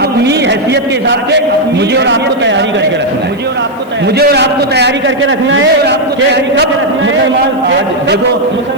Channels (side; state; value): left; noise; hiss, 30 dB below the sound